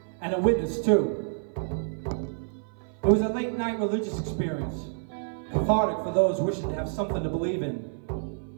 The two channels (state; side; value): silent; left; 55 dB below the other